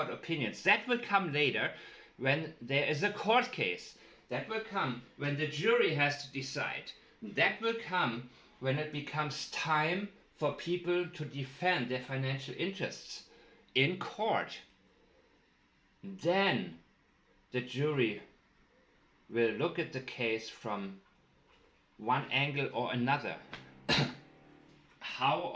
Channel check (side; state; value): both; identical; correlation 1.00